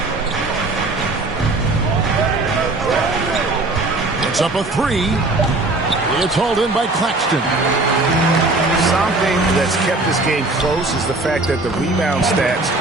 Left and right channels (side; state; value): left; quieter; 3.0 dB